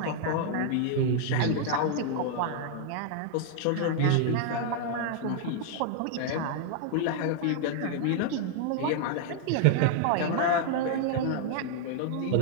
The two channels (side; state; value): both; different; correlation -0.01